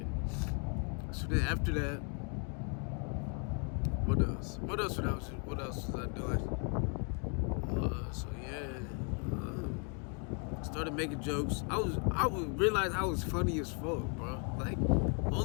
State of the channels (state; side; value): quieter; right; 39.0 dB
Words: So then after that, what else? What else was I doing? So yeah, started making jokes. I would realize I was funny as fuck, bro. Like